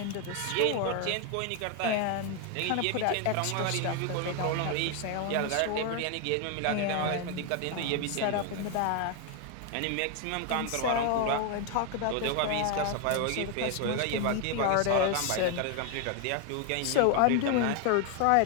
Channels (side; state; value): both; different; correlation 0.01